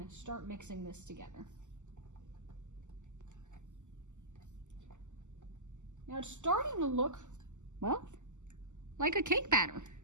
to start mixing this together. Now it's starting to look, well, like a cake batter,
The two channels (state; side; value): late; left; 0.84 ms